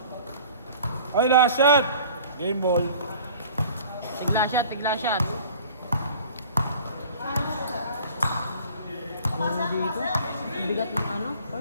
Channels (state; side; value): inverted; both; correlation -0.47